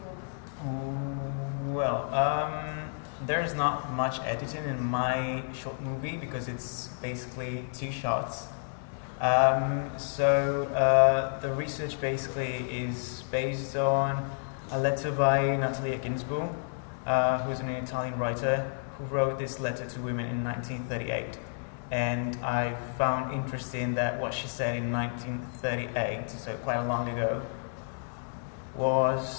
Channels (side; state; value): right; silent; digital silence